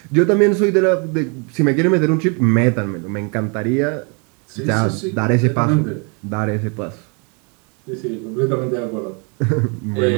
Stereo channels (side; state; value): left; quieter; 35.0 dB